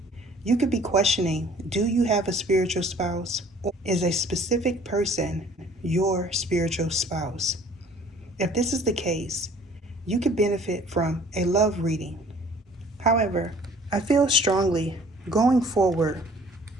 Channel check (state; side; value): normal; both; correlation 0.53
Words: You could be questioning, do you have a spiritual spouse? Or is a specific person your spiritual spouse? If this is the case, you could benefit from a love reading. However, I feel strongly going forward,